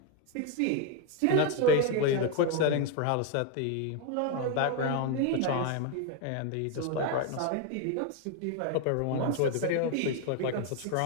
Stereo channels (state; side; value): different; both; correlation 0.01